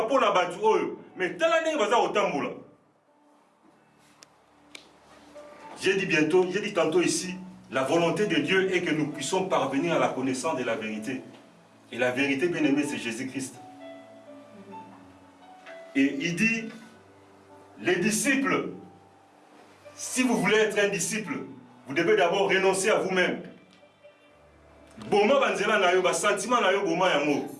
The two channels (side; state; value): both; identical; correlation 1.00